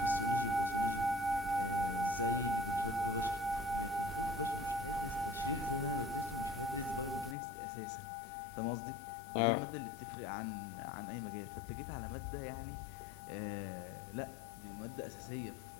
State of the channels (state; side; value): drops out; right; at 7.4 s